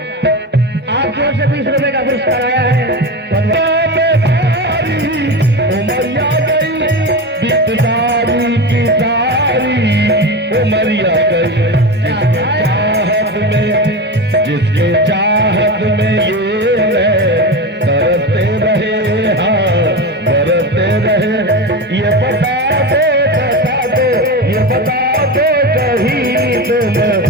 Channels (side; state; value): both; normal; correlation 0.22